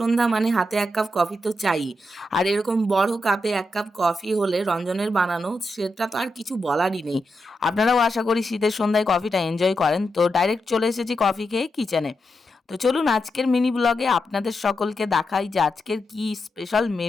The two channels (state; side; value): normal; both; correlation 0.86